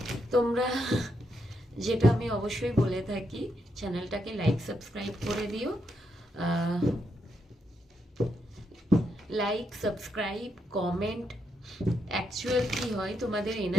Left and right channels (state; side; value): normal; both; correlation 0.81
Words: তোমরা যেটা আমি অবশ্যই বলে থাকি, চ্যানেলটাকে লাইক সাবস্ক্রাইব করে দিও। লাইক সাবস্ক্রাইব কমেন্ট, অ্যাকচুয়াল কি হয় তোমাদের